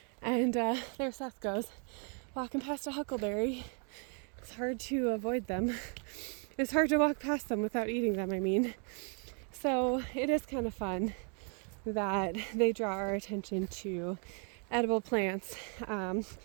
And there Seth goes, walking past a huckleberry. It's hard to avoid them. It's hard to walk past them without eating them, I mean. So it is kind of fun that they draw our attention to edible plants,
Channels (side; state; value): left; quieter; 39.7 dB